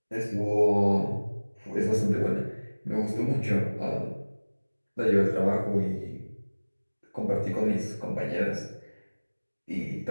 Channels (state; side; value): inverted; both; correlation -1.00